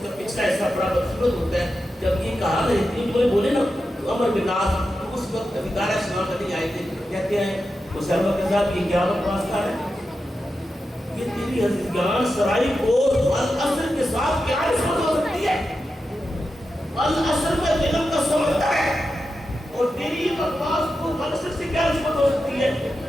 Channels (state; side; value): normal; both; correlation 0.90